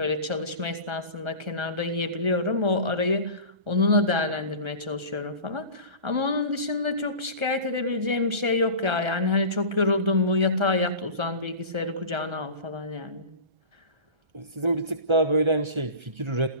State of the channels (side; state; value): left; late; 1.3 ms